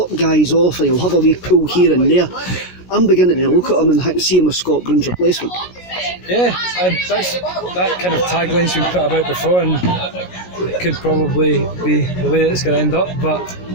guys off and he'll have a wee pull here and there. I'm beginning to look at him and see him as Scott Brown's replacement. Yeah, that kind of tagline's been put about before, and it could probably be the way it's going to end up. But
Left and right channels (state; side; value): late; right; 16 ms